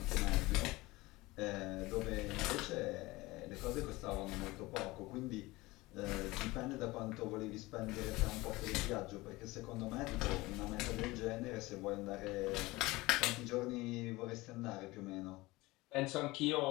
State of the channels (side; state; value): right; quieter; 20.8 dB